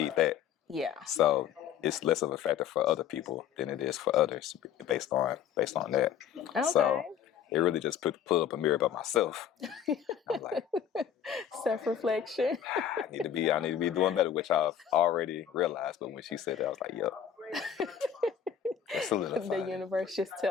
that. Yeah. So it's less of a factor for other people than it is for others based on that. Okay. So it really just put up a mirror about myself. I'm like, Self-reflection. I need to be doing better, which I've already realized. But when she said that, I was like, yep, it's solidified. The universe just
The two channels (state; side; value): quieter; right; 8.9 dB